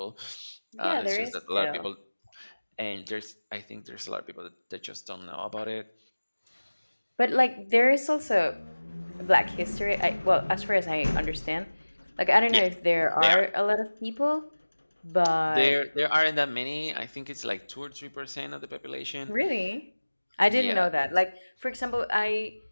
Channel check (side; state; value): both; inverted; correlation -1.00